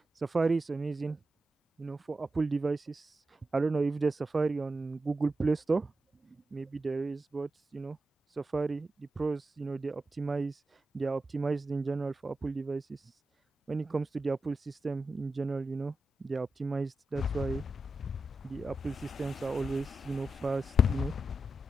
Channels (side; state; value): both; normal; correlation 0.90